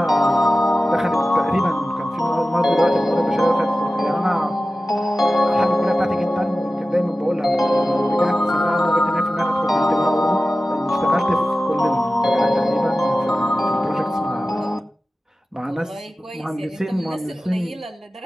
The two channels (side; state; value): both; normal; correlation 0.95